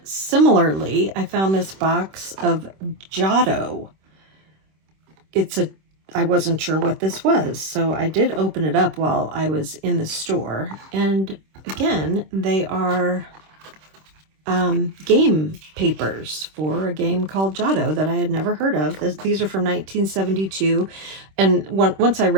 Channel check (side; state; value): left; late; 26 ms